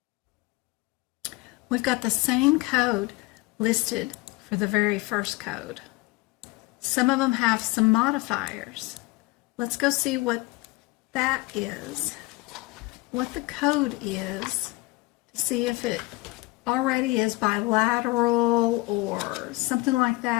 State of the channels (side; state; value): right; quieter; 22.5 dB